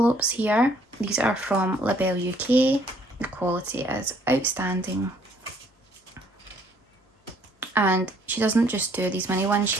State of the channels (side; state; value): both; normal; correlation 0.63